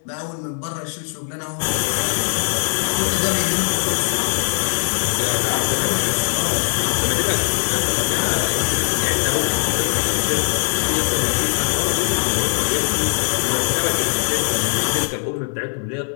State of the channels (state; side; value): silent; right; 65 dB below the other